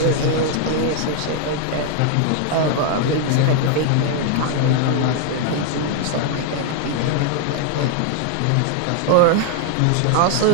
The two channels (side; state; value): both; different; correlation 0.00